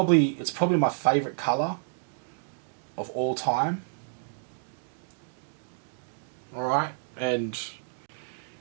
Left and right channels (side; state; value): left; silent; digital silence